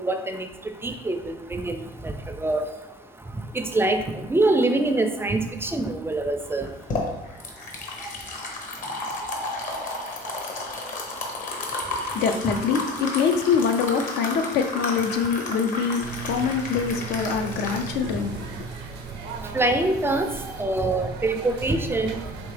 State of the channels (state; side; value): normal; both; correlation 0.43